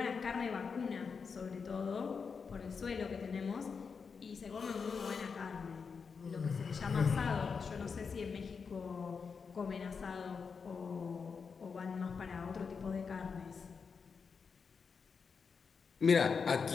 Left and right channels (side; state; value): right; quieter; 5.6 dB